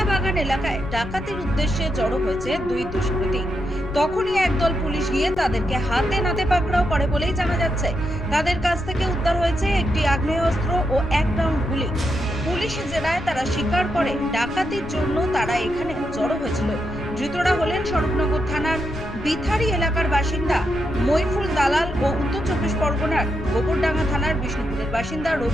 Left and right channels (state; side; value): noise; left; rumble, 12 dB below the sound